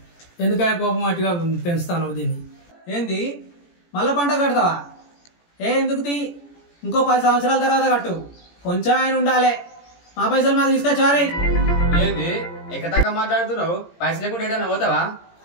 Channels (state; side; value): late; right; 17 ms